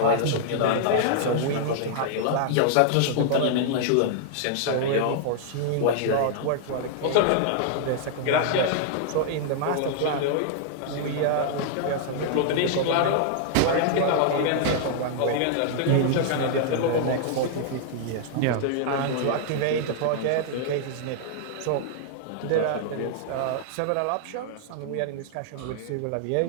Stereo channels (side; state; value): both; different; correlation -0.01